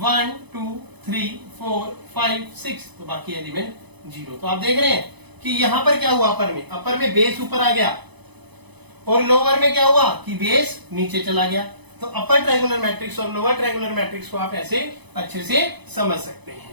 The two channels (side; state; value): left; late; 0.99 ms